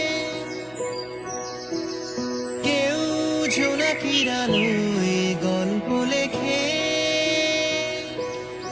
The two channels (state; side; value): noise; right; hum, 26 dB below the sound